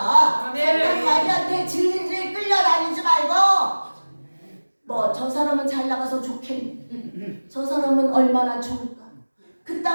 사탄 마귀한테 질질 끌려다니지 말고 뭐 저 사람은 잘 나가서 좋겠네. 저 사람은 얼마나 좋을까.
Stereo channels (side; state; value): both; inverted; correlation -1.00